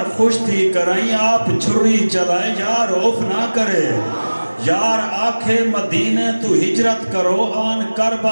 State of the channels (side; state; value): both; inverted; correlation -1.00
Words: खुश थी कराई आप छुरी चलाए यार उफ ना करे यार आखे मदीने तू हिजरत करो आन